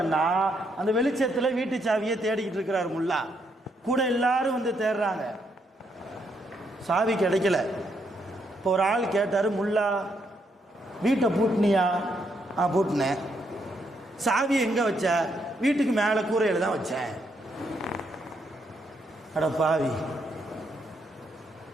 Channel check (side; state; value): both; normal; correlation 0.76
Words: அந்த வெளிச்சத்தில் வீட்டு சாவியை தேடிக்கிட்டு இருக்கிறார் முல்லா. கூட எல்லாரும் வந்து தேடுறாங்க, சாவி கிடைக்கல. இப்போ ஒரு ஆள் கேட்டார், முல்லா வீட்டை பூட்டினியா? பூட்டினேன். சாவியை எங்கே வச்ச? வீட்டுக்கு மேலே கூரையில் தான் வச்சேன். அட பாவி,